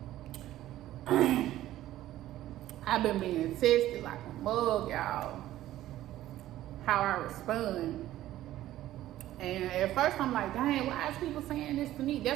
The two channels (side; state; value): left; quieter; 14.1 dB